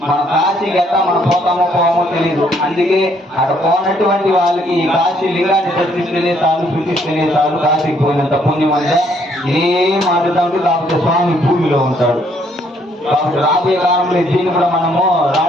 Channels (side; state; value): both; normal; correlation 0.68